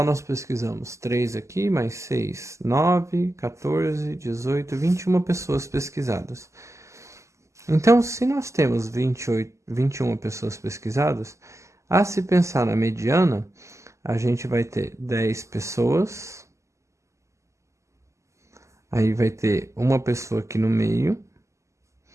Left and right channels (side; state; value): left; late; 0.14 ms